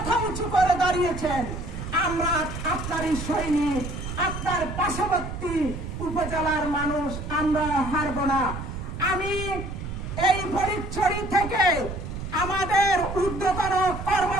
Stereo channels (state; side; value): noise; right; rumble, 7 dB below the sound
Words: উঁচু করে দাঁড়িয়েছেন। আমরা আপনারই সৈনিক, আপনার পার্শ্ববর্তী উপজেলার মানুষ, আমরা হারব না। আমি এই ফরিদছড়ি থেকে আমাদের ঊর্ধ্বতন